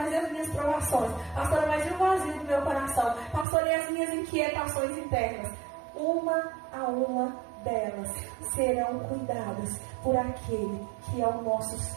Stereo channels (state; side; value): drops out; left; at 3.5 s